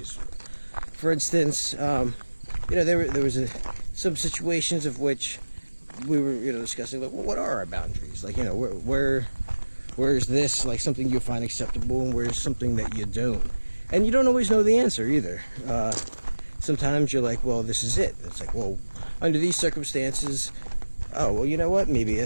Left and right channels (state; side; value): inverted; both; correlation -1.00